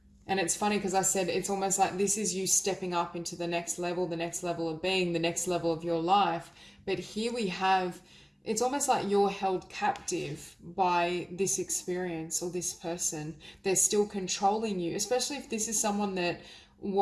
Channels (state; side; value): identical; both; correlation 1.00